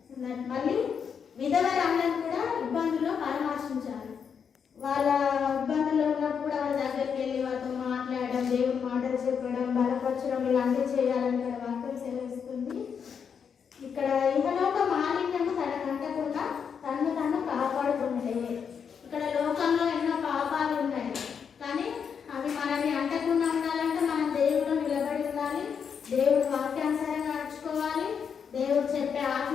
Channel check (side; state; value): right; quieter; 6.9 dB